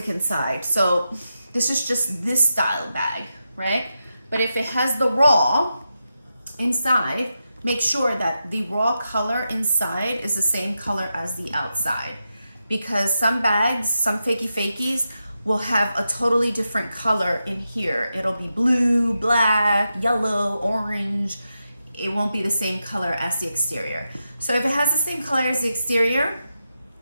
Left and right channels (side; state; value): both; inverted; correlation -0.88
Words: inside, so this is just this style bag, right? But if it has the raw inside, make sure that the raw color inside is the same color as the outside, because some bags, some fakies will have a totally different color in here. It'll be blue, black, yellow, orange. It won't be the same color as the exterior. So if it has the same color as the exterior,